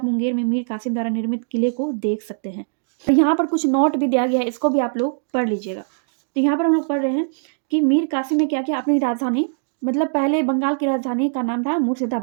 मुंगेर में मीर कासिम द्वारा निर्मित किले को देख सकते हैं। तो यहाँ पर कुछ नोट भी दिया गया है, इसको भी आप लोग पढ़ लीजिएगा। तो यहाँ पर हम लोग पढ़ रहे हैं कि मीर कासिम ने क्या किया, अपनी राजधानी, मतलब पहले बंगाल की राजधानी का नाम था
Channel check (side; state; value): left; silent; digital silence